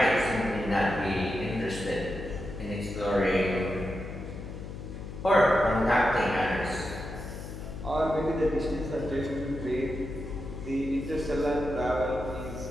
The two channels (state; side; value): noise; left; hum, 9 dB below the sound